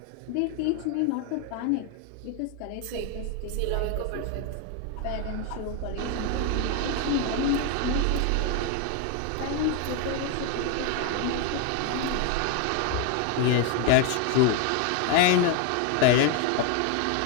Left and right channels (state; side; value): different; both; correlation 0.01